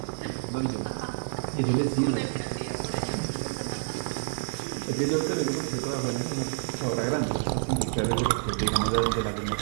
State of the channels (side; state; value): left; silent; 59 dB below the other